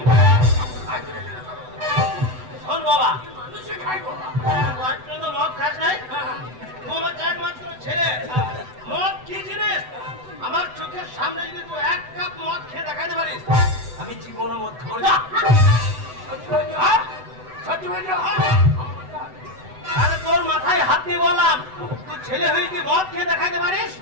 শোন বাবা, মানুষে খাই বাবা। আজ পর্যন্ত মদ খাস নাই, হ্যাঁ, তুই আমার একমাত্র ছেলে। মদ কি জিনিস আমার চোখের সামনে যদি তুই এক কাপ মদ খেয়ে দেখাতে পারিস, আমি জীবনে মদ খাবো না। সত্যি বলছো? সত্যি বলছো? আরে তোর মাথায় হাত দিয়ে বললাম, তুই ছেলে হয়ে যদি মদ খেয়ে দেখাতে পারিস,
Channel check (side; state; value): left; late; 7.9 ms